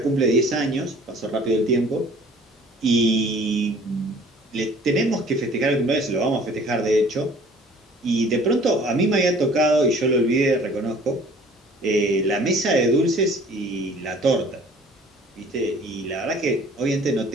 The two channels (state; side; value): normal; both; correlation 0.51